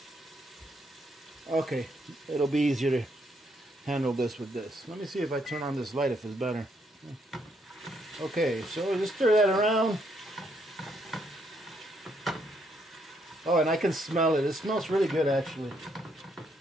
Okay, it'll be easier to handle this with this. Let me see if I turn on this light if it's better. Okay, so just stir that around. Oh, and I can smell it. It smells really good, actually.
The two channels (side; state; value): both; normal; correlation 0.73